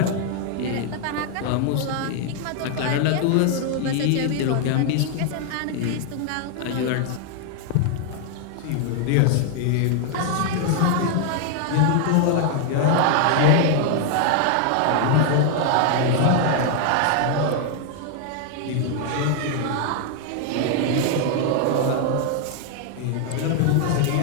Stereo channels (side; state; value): both; different; correlation 0.00